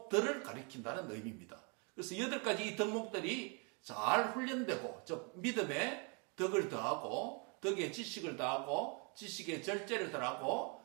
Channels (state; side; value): quieter; left; 34.8 dB